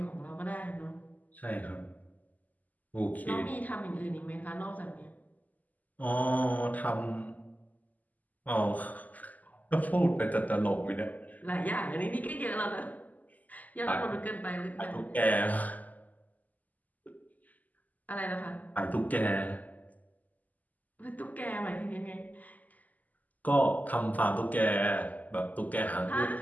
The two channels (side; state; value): right; late; 0.080 ms